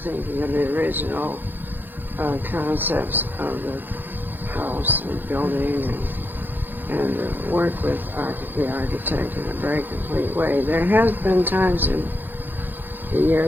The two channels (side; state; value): left; late; 0.091 ms